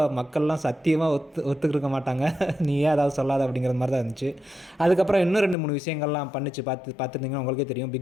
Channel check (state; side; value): drops out; right; at 5.6 s